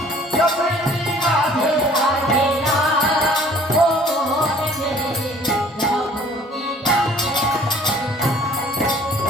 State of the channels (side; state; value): both; normal; correlation 0.53